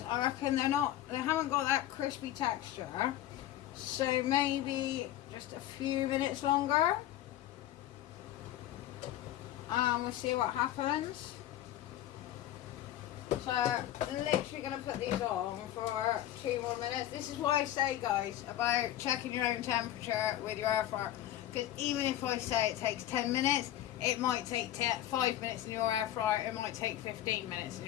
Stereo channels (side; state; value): right; quieter; 13.0 dB